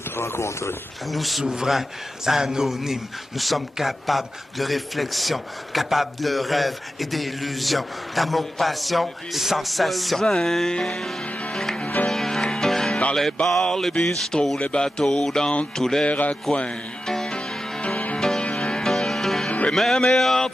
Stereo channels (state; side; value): normal; both; correlation 0.91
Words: te rencontrer. Nous, souverains anonymes, nous sommes capables de réflexion, capables de rêves et d'illusions, d'amour, passion et sensation. Dans les bars, les bistrots, les bateaux, dans tous les raccoins. Les mêmes meilleurs